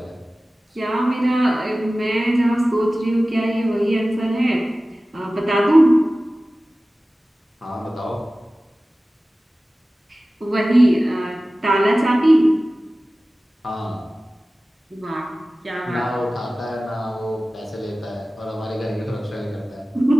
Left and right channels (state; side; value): normal; both; correlation 0.97